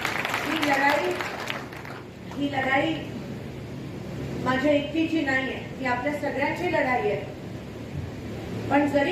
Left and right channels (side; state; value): both; identical; correlation 1.00